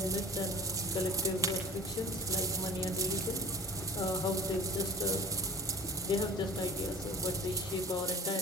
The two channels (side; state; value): both; normal; correlation 0.42